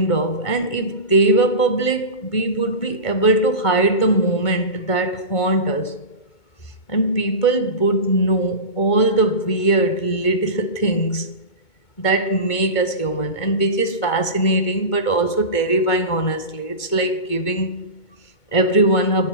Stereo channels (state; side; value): late; right; 2.2 ms